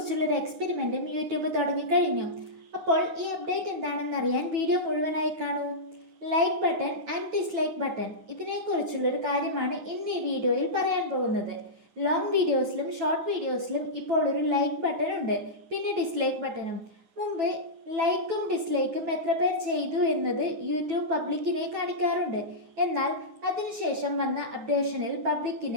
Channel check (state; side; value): late; left; 9.1 ms